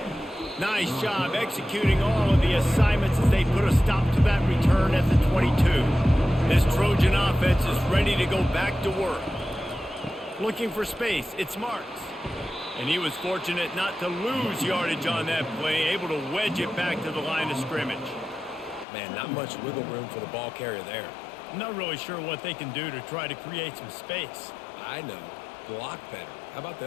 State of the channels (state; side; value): drops out; right; at 18.9 s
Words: Nice job executing all of the assignments as they put a stop to that return at the 22. This Trojan offense is ready to go back to work. Looking for space, it's Marks. And he was fortunate not to lose yardage on that play, able to wedge it back to the line of scrimmage. Man, not much wiggle room for the ball carrier there. I'm not really sure what they can do to try to create some space. I know. Block better. How about